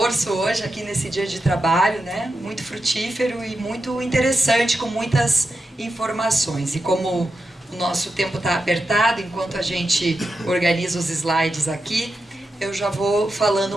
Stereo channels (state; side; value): normal; both; correlation 0.89